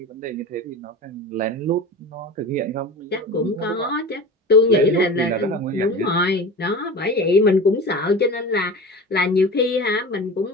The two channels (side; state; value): both; normal; correlation 0.33